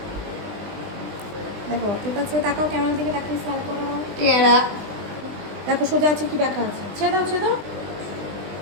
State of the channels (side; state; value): left; late; 20 ms